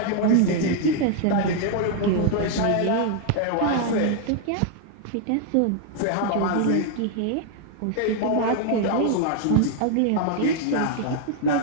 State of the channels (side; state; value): both; different; correlation 0.00